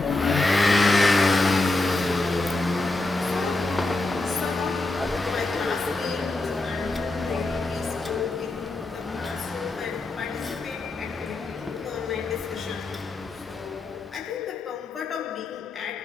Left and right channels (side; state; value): right; quieter; 3.1 dB